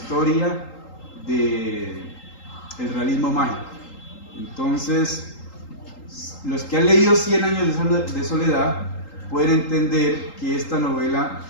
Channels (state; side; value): late; right; 3.8 ms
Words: del realismo mágico. Entonces, los que han leído 100 años de soledad pueden entender que esta novela